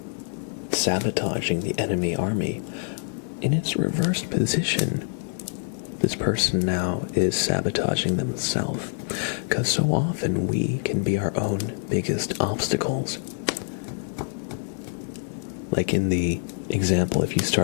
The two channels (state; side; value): silent; right; digital silence